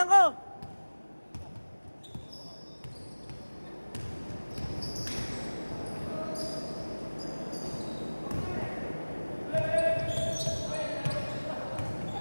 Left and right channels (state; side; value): inverted; both; correlation -1.00